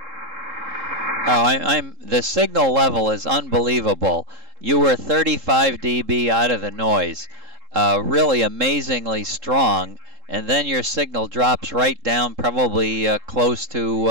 Oh, the signal level is unbelievable. You were 35 dB out of the noise, really amazingly strong, and then your signal drops right down, probably close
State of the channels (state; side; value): late; left; 3.7 ms